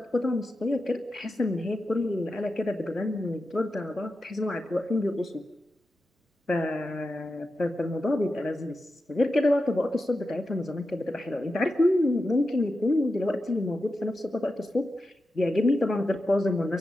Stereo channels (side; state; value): both; normal; correlation 0.90